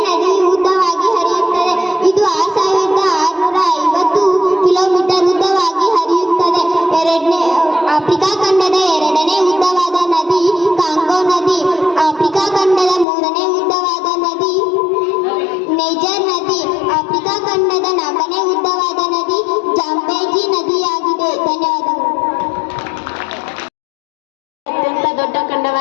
ನದಿ ಉದ್ದವಾಗಿ ಹರಿಯುತ್ತದೆ. ಇದು 6650 ಕಿಲೋಮೀಟರ್ ಉದ್ದವಾಗಿ ಹರಿಯುತ್ತದೆ. ಆಫ್ರಿಕಾ ಖಂಡದ ಎರಡನೇ ಉದ್ದವಾದ ನದಿ ಕಾಂಗೋ ನದಿ. ಆಫ್ರಿಕಾ ಖಂಡದ ಮೂರನೇ ಉದ್ದವಾದ ನದಿ ನೈಜರ್ ನದಿ. ಆಫ್ರಿಕಾ ಖಂಡದ ನಾಲ್ಕನೇ ಉದ್ದವಾದ ನದಿ ಜಾಂಬೇಜಿ ನದಿಯಾಗಿದೆ. ಧನ್ಯವಾದಗಳು. ಅತ್ಯಂತ ದೊಡ್ಡ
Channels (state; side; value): drops out; right; at 13.1 s